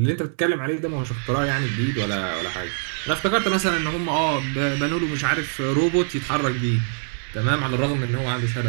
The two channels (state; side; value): silent; left; digital silence